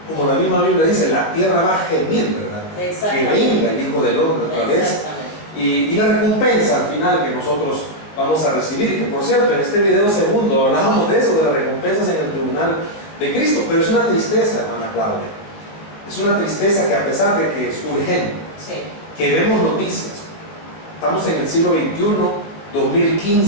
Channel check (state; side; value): late; right; 19 ms